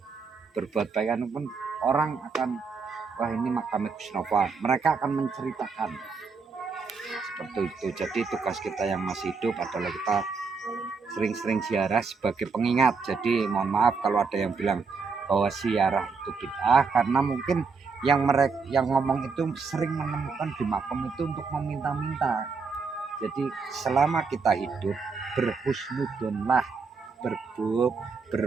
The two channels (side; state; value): left; quieter; 4.9 dB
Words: berbuat baik pun orang akan, wah ini makam Gus Nova, mereka akan menceritakan seperti itu. Jadi tugas kita yang masih hidup adalah kita sering-sering ziarah sebagai pengingat. Jadi mohon maaf kalau ada yang bilang bahwa ziarah itu bid'ah, karena mungkin yang ngomong itu sering menemukan di makam itu untuk meminta-minta. Jadi selama kita hidup berhusnudonlah,